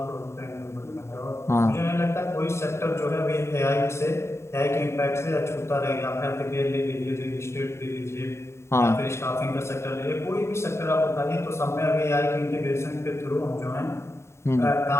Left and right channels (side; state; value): right; late; 0.13 ms